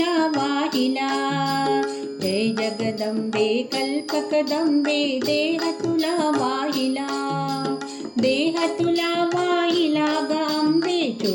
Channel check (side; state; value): both; identical; correlation 1.00